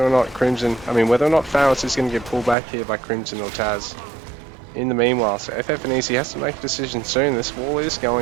not Pharos is going to get pulled back here by Crimson or Taz. In the meanwhile, so FF and Easy has to make a decision soon. This wall is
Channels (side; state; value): left; drops out; at 2.6 s